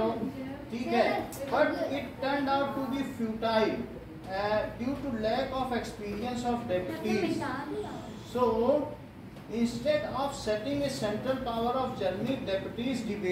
ठीक है, but it turned out to be futile due to lack of experience of deputies. So, instead of setting a central power of Germany, deputies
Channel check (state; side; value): identical; both; correlation 1.00